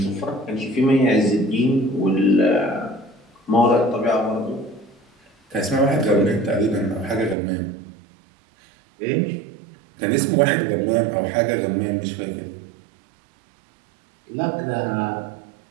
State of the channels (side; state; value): left; drops out; at 7.4 s